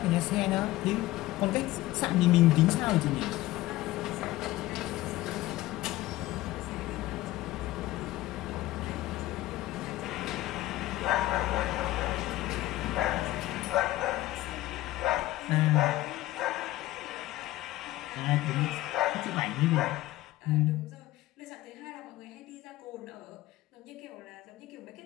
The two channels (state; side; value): quieter; right; 16.8 dB